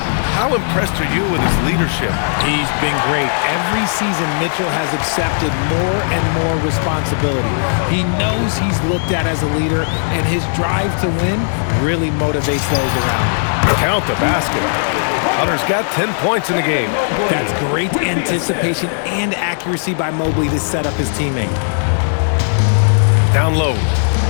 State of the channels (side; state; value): right; silent; digital silence